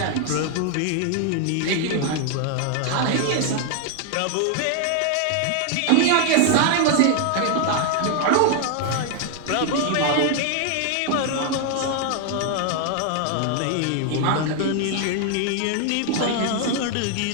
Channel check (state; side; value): different; both; correlation 0.00